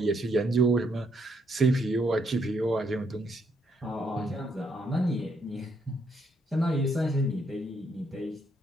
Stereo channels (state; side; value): normal; both; correlation 0.73